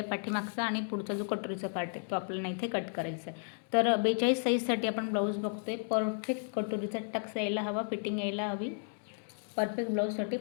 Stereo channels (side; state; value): right; silent; digital silence